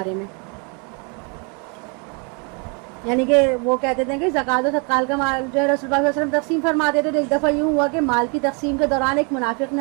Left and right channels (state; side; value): quieter; left; 34.7 dB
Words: میں، یعنی کہ وہ کہتے تھے کہ زکوٰۃ و صدقات کا مال جو ہے رسول اللہ صلی اللہ علیہ وسلم تقسیم فرماتے تھے، تو ایک دفعہ یوں ہوا کہ مال کی تقسیم کے دوران ایک منافق